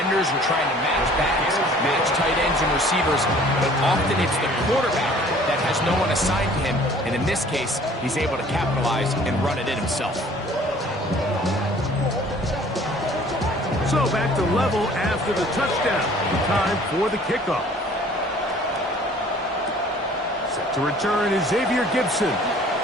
are trying to match backs, match tight ends and receivers, but often it's the quarterback that has no one assigned to him, and in this case, he's able to capitalize and run it in himself. So back to level after the touchdown. Time for the kickoff. Set to return is Xavier Gibson.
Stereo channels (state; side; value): normal; both; correlation 0.52